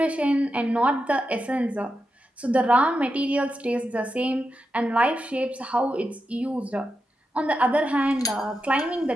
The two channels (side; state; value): both; normal; correlation 0.88